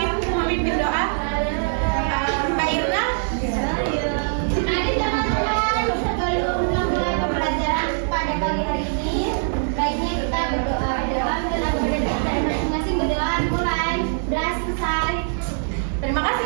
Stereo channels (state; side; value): silent; left; digital silence